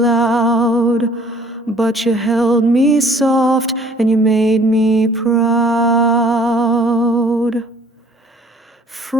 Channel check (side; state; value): both; normal; correlation 0.56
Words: loud, but you held me soft and you made me proud.